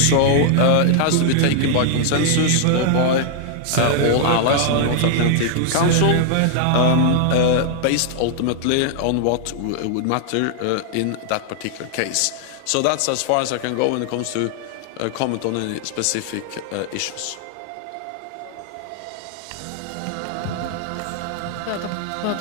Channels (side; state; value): both; different; correlation -0.01